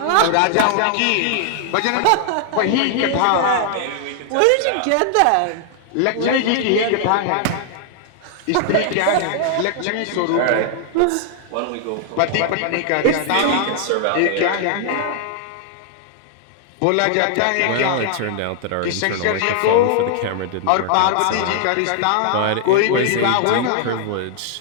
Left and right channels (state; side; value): different; both; correlation 0.00